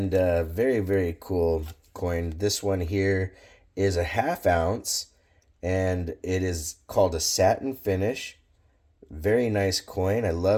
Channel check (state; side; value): identical; both; correlation 1.00